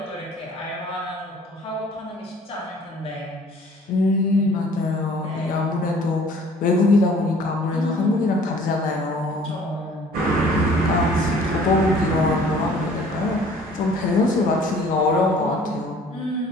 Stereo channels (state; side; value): normal; both; correlation 0.53